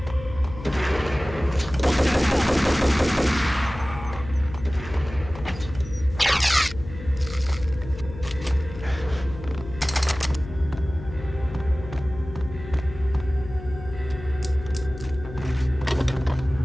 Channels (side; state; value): left; noise; hum, 12 dB below the sound